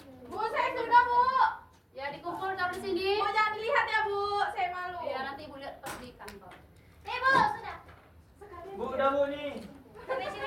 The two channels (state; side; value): identical; both; correlation 1.00